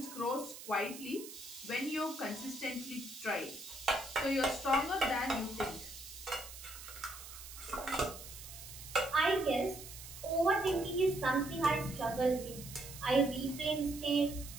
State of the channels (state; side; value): noise; right; hiss, 13 dB below the sound